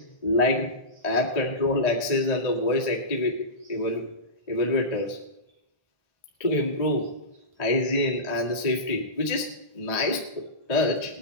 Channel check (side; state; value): right; late; 1.8 ms